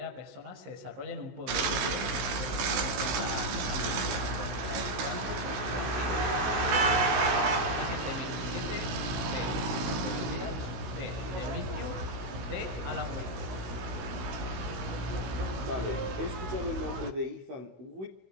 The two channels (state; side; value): late; left; 16 ms